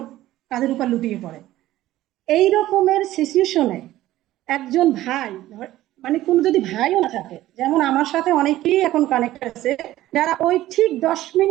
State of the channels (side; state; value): left; quieter; 15.1 dB